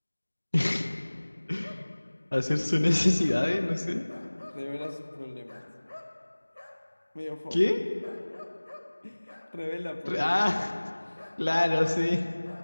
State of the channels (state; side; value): inverted; both; correlation -1.00